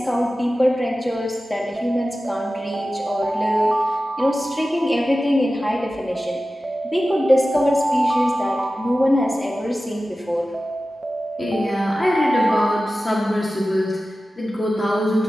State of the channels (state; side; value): normal; both; correlation 0.95